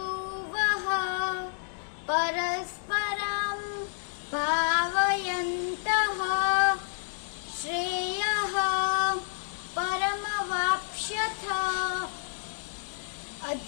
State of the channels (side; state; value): right; silent; 56 dB below the other